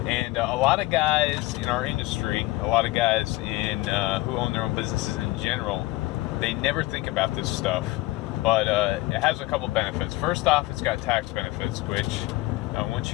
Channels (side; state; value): right; quieter; 19.6 dB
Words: And a lot of guys in our industry, a lot of guys in who own their own businesses in general, they never think about this stuff. But it has a couple benefits. First off, it's got tax benefits, which once